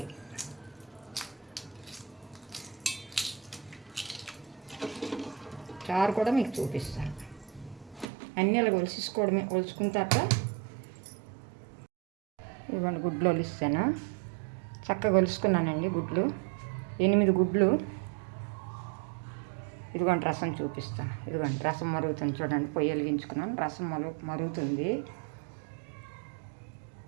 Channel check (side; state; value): left; drops out; at 8.1 s